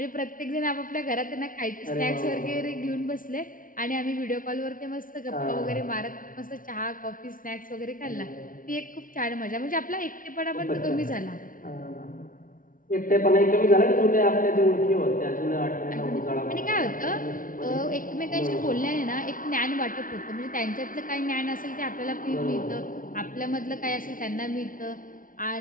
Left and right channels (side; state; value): right; late; 0.39 ms